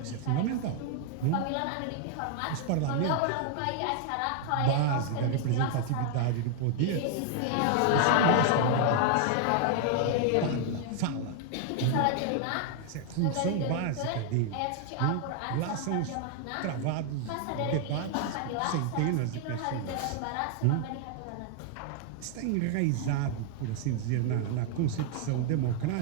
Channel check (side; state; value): both; different; correlation 0.00